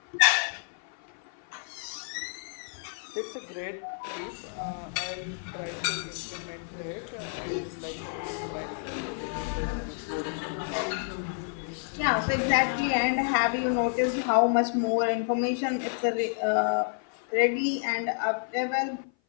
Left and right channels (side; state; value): right; silent; 55 dB below the other